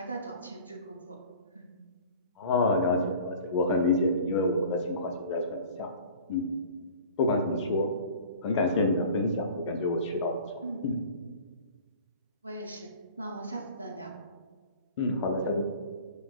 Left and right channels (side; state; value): both; inverted; correlation -0.43